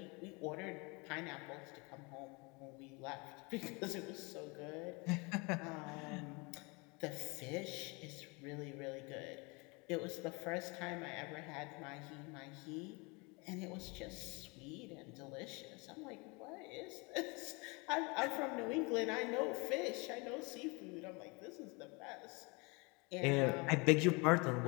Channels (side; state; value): right; quieter; 28.6 dB